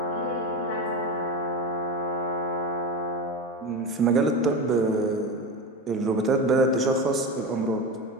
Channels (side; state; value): both; normal; correlation 0.22